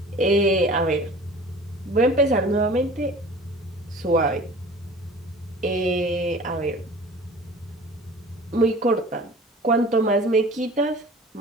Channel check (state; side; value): normal; both; correlation 0.43